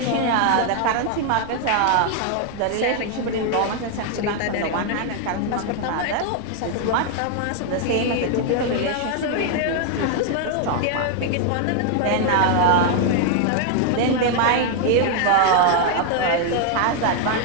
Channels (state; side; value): different; both; correlation 0.00